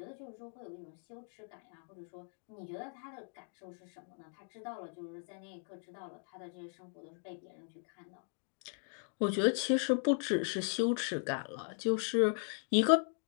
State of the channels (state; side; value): silent; right; 52 dB below the other